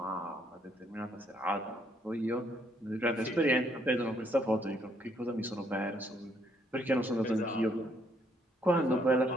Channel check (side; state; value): both; normal; correlation 0.70